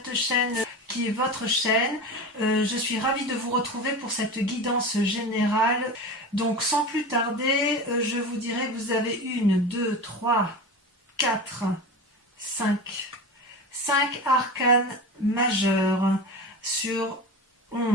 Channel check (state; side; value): normal; both; correlation 0.28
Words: chaîne qui est votre chaîne. Je suis ravie de vous retrouver pour cette guidance générale. Donc sans plus tarder, je vous dirai que vous avez 1, 2, 3, 4, 5 arcanes majeurs sur